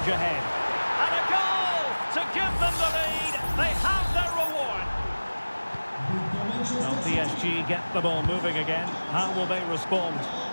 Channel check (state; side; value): inverted; both; correlation -1.00